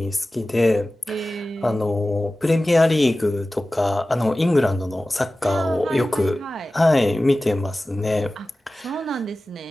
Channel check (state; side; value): normal; both; correlation 0.96